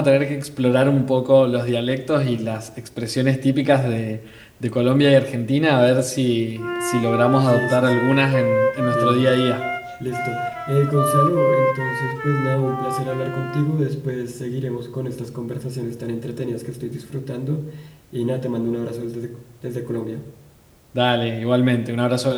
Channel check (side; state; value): both; identical; correlation 1.00